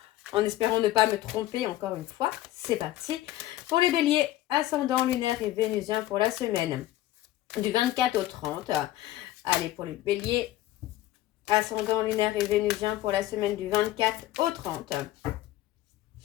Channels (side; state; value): right; quieter; 14.8 dB